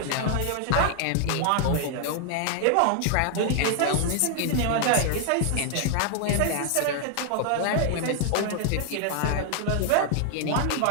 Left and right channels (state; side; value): different; both; correlation 0.00